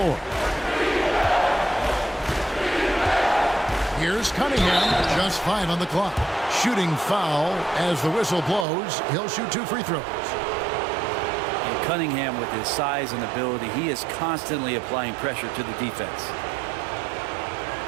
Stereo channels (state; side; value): drops out; left; at 8.7 s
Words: Here's Cunningham, just 5 on the clock. Shooting foul as the whistle blows. He'll shoot 2 free throws. And Cunningham, with his size and ability, he is constantly applying pressure to the defense.